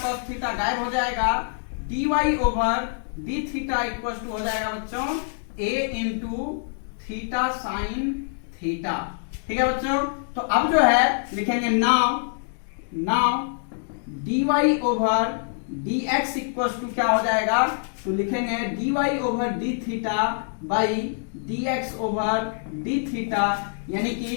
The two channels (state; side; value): silent; right; digital silence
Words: गायब हो जाएगा, dy over d theta equal to हो जाएगा बच्चों a into theta sine theta. ठीक है बच्चों, तो अब जो है लिखेंगे now dy over dx equals to क्या हो जाएगा, तो लिखेंगे dy over d theta by dx over d theta, यानी